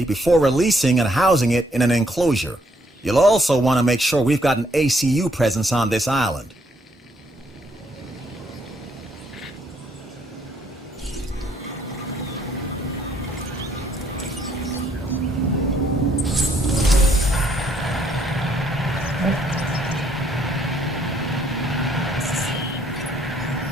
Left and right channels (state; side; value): normal; both; correlation 0.69